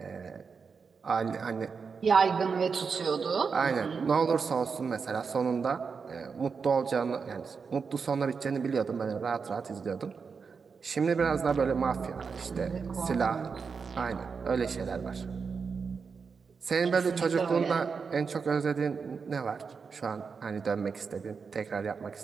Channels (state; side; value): quieter; left; 5.5 dB